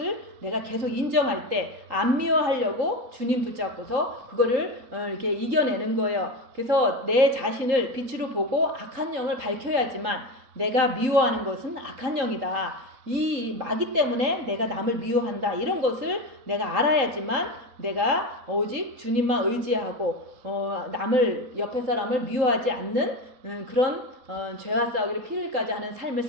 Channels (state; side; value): late; left; 3.8 ms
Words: 내가 계속 인정할 때 안 미워하려고 주님 붙잡고서 그거를 이렇게 이겨내는 거예요. 그래서 내 자신을 빛으로 보고 악한 영을 밝혀야지만, 내가 미워하는 것은 악한 영이다, 이 마귀 때문에 내가 남을 미워한다, 이런 것을 내가 알아야지만 내가 오직 주님만 의지하고 남을, 옆에 사람을 미워하지 않는 그런 죄와 싸우기를 피 흘리까지 하는 삶을